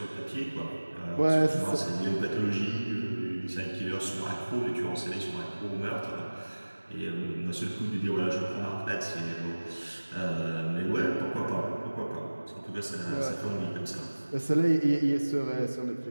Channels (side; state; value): both; inverted; correlation -1.00